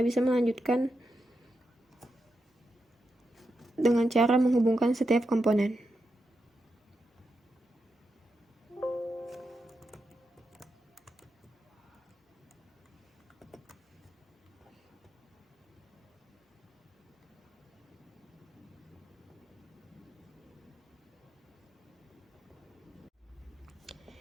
melanjutkan dengan cara menghubungkan setiap komponen.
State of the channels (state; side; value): normal; both; correlation 0.86